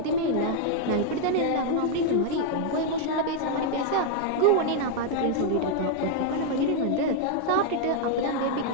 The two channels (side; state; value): both; different; correlation 0.00